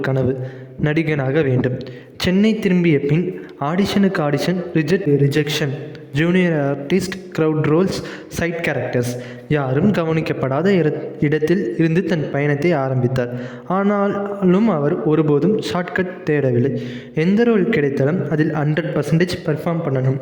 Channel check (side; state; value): both; identical; correlation 1.00